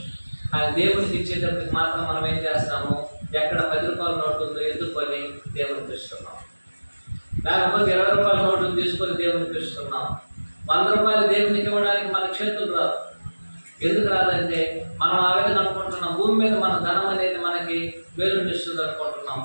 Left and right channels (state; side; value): inverted; both; correlation -1.00